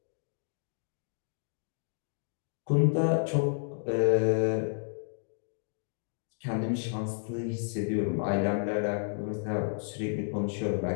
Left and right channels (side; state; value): right; silent; digital silence